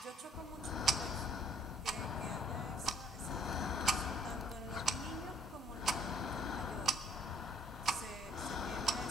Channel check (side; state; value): both; normal; correlation 0.61